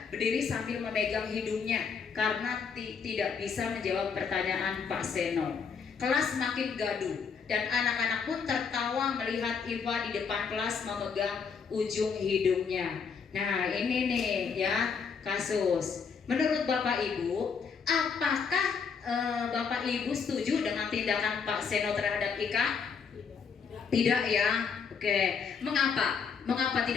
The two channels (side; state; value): right; quieter; 6.0 dB